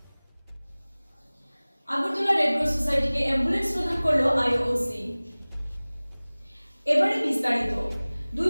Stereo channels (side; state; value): both; inverted; correlation -1.00